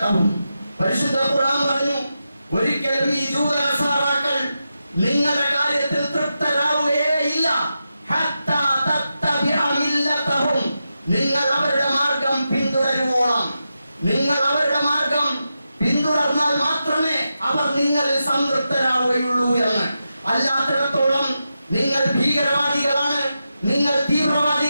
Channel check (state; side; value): inverted; both; correlation -0.89